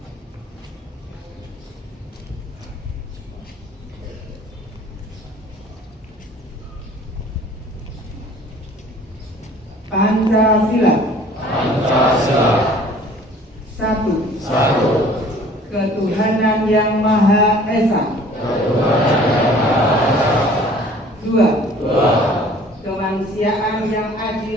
Pancasila. Satu. Ketuhanan yang Maha Esa. Dua. Kemanusiaan yang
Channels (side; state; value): both; normal; correlation 0.51